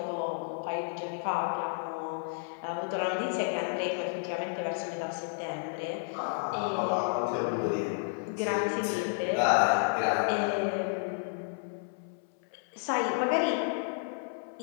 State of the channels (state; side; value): silent; right; 57 dB below the other